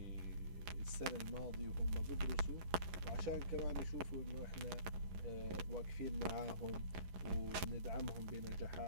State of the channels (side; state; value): left; late; 11 ms